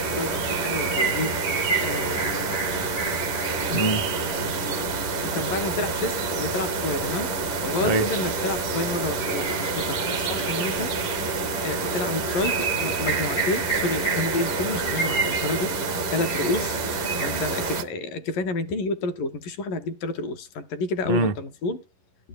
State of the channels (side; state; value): right; late; 11 ms